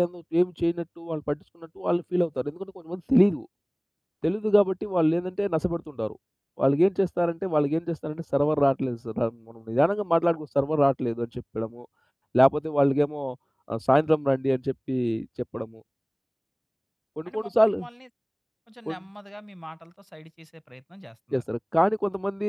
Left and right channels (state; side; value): identical; both; correlation 1.00